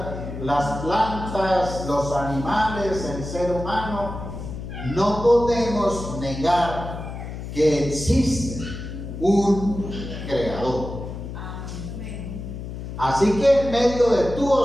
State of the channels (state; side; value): noise; left; hum, 8 dB below the sound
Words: las plantas, los animales, el ser humano, no podemos negar que existe un creador. Así que en medio de tu